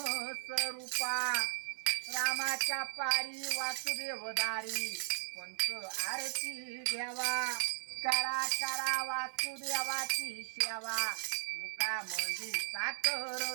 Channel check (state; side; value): silent; left; 53 dB below the other